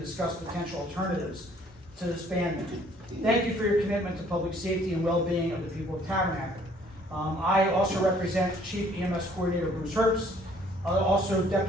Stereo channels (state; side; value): normal; both; correlation 0.60